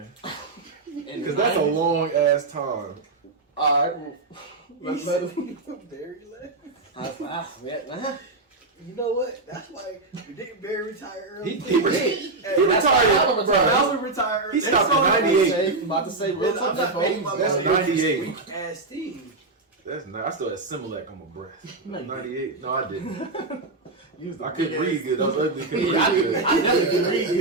Because that's a long ass time. All right, let's let him. Barry left. Yeah, You know what? That's why we didn't Barry retire early. He retired. Bro, retire early. He stopped That's at all 98. I'm about to say real I'm not making my That's money. 98. Weak ass team. That's not. I still had Similac on my breath. 98. No, I didn't. I couldn't couldn't read good. I was ugly. Couldn't Yeah, read good. I definitely can read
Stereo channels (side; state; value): left; quieter; 3.4 dB